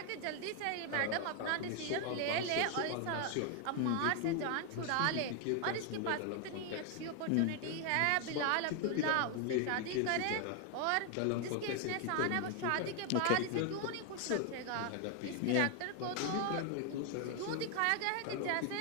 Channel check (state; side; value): different; both; correlation 0.01